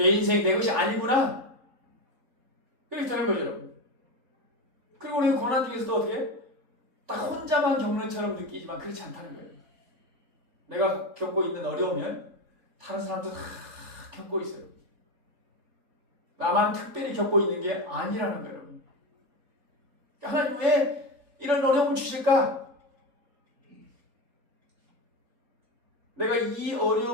인생이 내 것이 아니구나. 그렇게 되는 거죠, 여러분. 그리고 우리가 고난 중에서도 어떻게? 딱 혼자만 겪는 처럼 느끼지만 그렇지 않다는 거예요. 내가 겪고 있는 어려우면 다른 사람도 다 겪고 있어요. 나만 특별히 겪고 있는 게 아니라는 거예요, 여러분. 하나님 왜 이런 어려움을 주실까? 내가 이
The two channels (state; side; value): late; left; 3.4 ms